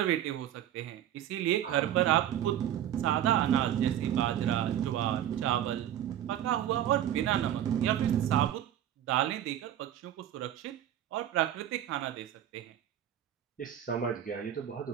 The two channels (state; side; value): quieter; left; 11.2 dB